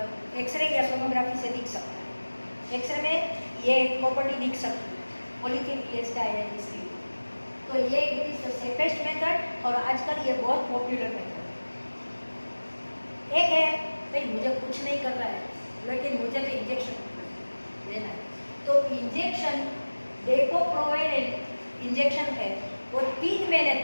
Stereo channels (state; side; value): inverted; both; correlation -1.00